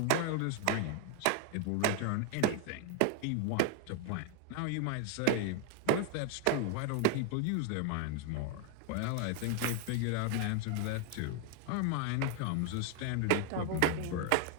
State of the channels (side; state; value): both; different; correlation 0.01